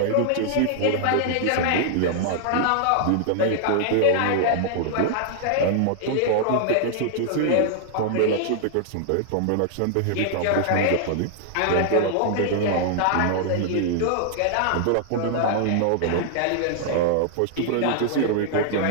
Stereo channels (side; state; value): both; different; correlation -0.01